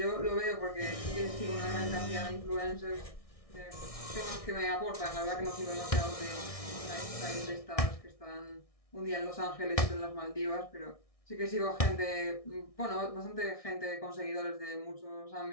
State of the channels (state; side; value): late; right; 1.6 ms